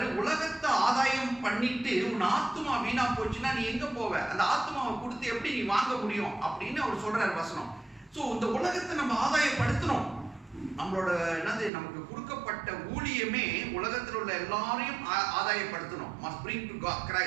உலகத்தை ஆதாயம் பண்ணிட்டு உன் ஆத்மா வீணா போச்சுன்னா நீ எங்க போவ? அந்த ஆத்மாவை கொடுத்து எப்படி நீ வாங்க முடியும் அப்படின்னு அவர் சொல்றாரு வசனம். சோ இந்த உலகத்தை நம்ம ஆதாயப்படுத்தணும். நம்மளோட நமக்கு கொடுக்கப்பட்ட ஊழியமே உலகத்தில் உள்ள எல்லாரையும் ஆதாயப்படுத்தணும். must bring to God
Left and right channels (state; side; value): drops out; left; at 11.7 s